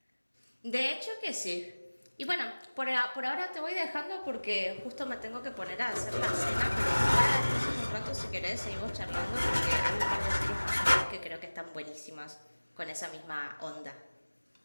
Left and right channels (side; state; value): both; inverted; correlation -1.00